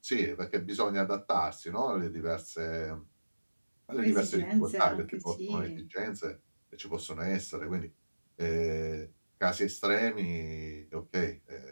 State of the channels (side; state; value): both; inverted; correlation -1.00